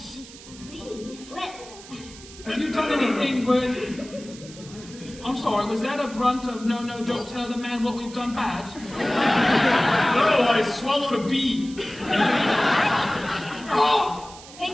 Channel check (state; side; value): noise; right; hiss, 18 dB below the sound